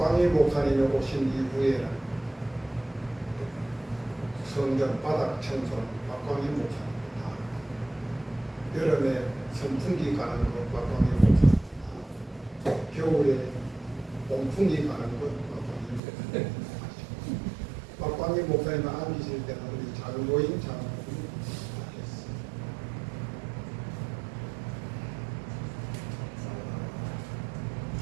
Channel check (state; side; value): drops out; left; at 16.0 s